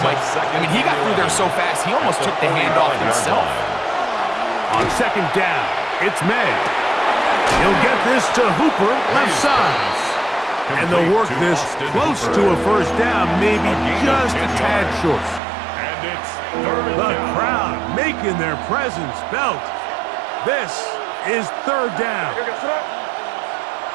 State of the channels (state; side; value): drops out; left; at 15.4 s